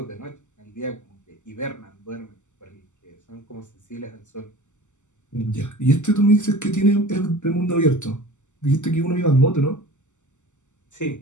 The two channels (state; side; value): late; right; 0.84 ms